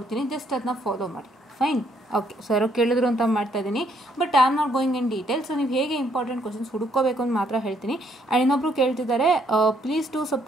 ಜಸ್ಟ್ ಅದನ್ನ ಫಾಲೋ ಮಾಡಿ. Fine, okay. ಸರ್ ಕೇಳಿದ್ರು ಅಂತ ಮಾಡ್ತಾ ಇದ್ದೀನಿ. But I am not going in detail. So ನೀವು ಹೇಗೆ ಇಂಪಾರ್ಟೆಂಟ್ ಕ್ವಶನ್ಸ್ ಹುಡುಕೋಬೇಕು ಅಂತ ಮಾತ್ರ ಹೇಳ್ತೀನಿ. ಆ್ಯಂಡ್ ಇನ್ನೊಬ್ರು ಕೇಳ್ತಿದ್ದಾರೆ, please to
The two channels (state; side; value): normal; both; correlation 0.70